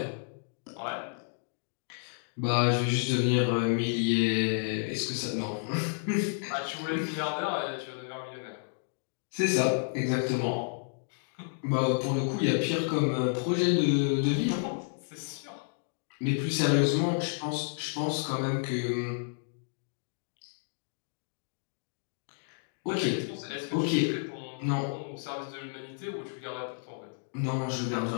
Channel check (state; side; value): silent; right; digital silence